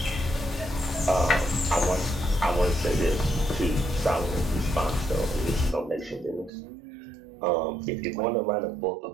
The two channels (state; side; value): drops out; left; at 6.5 s